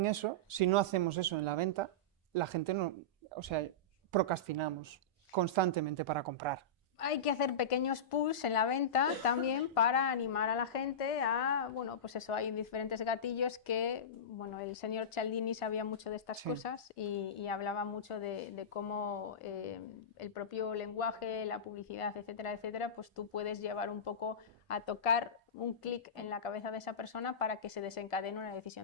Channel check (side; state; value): both; normal; correlation -0.17